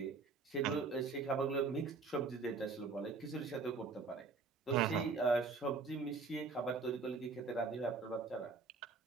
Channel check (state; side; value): quieter; left; 4.3 dB